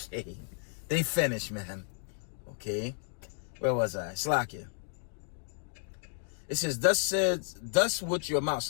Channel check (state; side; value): silent; right; 56 dB below the other